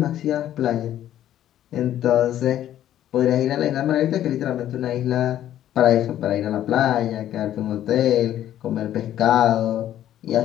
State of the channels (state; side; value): quieter; right; 11.9 dB